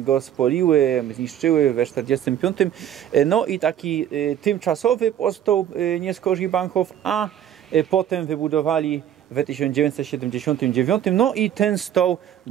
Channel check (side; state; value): left; quieter; 10.4 dB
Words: spoliły, zniszczyły we 45, no i taki tymczasowy powstał nie skorzy Bahnhof, a potem wybudowali w 1979, no i ten stał